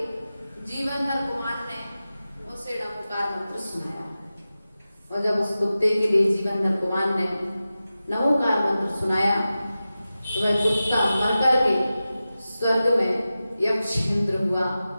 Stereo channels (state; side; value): inverted; both; correlation -0.94